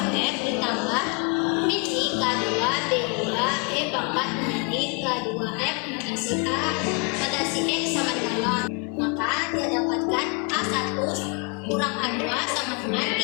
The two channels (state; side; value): quieter; right; 34.3 dB